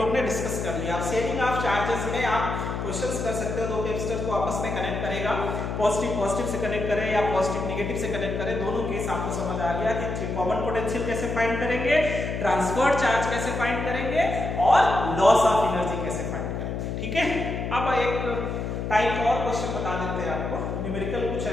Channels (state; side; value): noise; left; hum, 3 dB below the sound